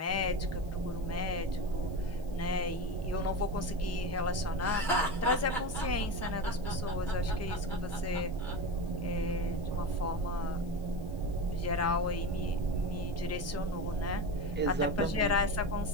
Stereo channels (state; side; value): noise; left; hiss, 26 dB below the sound